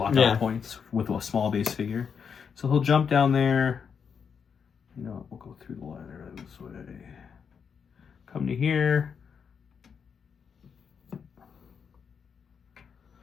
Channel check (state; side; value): quieter; right; 6.6 dB